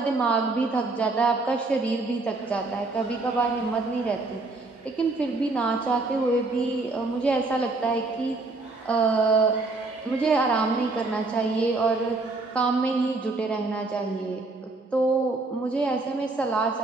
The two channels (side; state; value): left; quieter; 3.4 dB